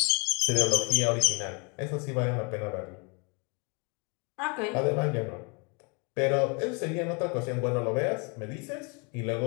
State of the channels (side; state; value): right; quieter; 30.6 dB